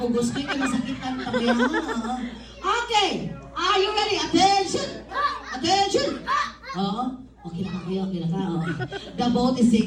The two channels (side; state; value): both; identical; correlation 1.00